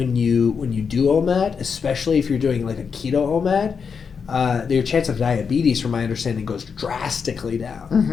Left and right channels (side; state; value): right; quieter; 6.1 dB